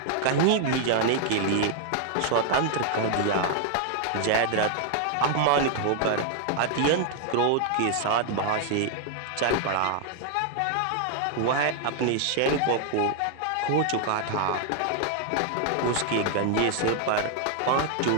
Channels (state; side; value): different; both; correlation 0.00